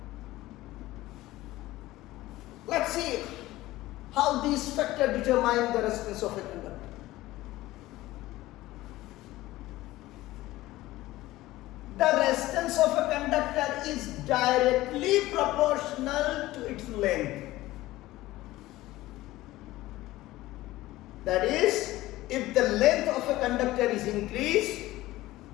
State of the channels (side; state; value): right; quieter; 17.2 dB